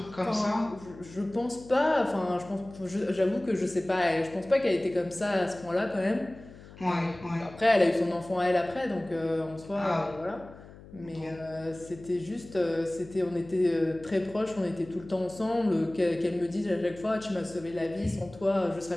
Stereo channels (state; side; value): noise; left; hum, 19 dB below the sound